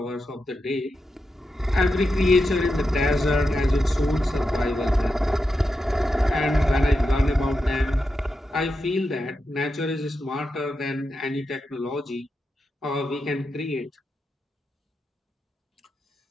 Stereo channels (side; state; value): both; normal; correlation 0.88